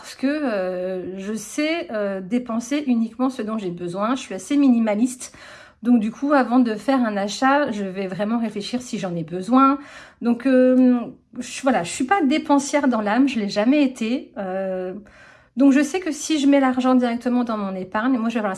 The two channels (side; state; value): both; identical; correlation 1.00